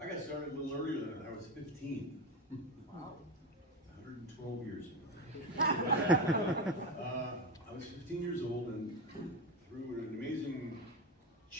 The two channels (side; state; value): both; normal; correlation 0.19